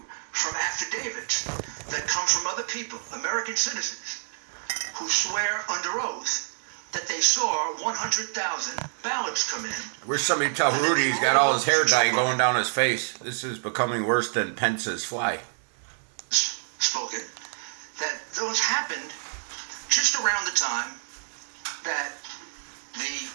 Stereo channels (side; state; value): left; silent; digital silence